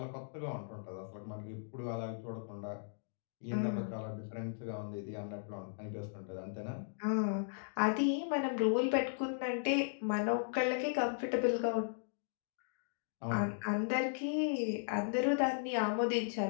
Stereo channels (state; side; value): silent; right; digital silence